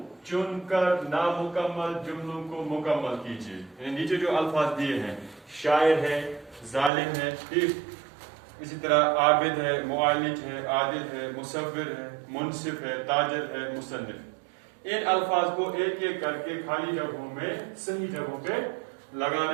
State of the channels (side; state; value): left; drops out; at 6.9 s